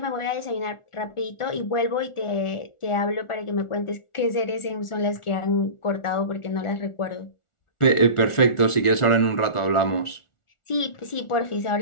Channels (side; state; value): right; late; 1.4 ms